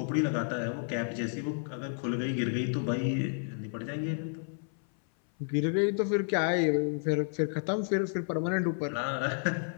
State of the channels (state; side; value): silent; right; 57 dB below the other